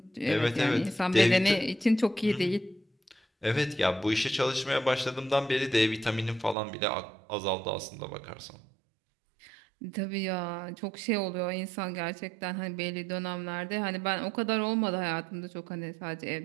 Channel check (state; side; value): drops out; left; at 6.6 s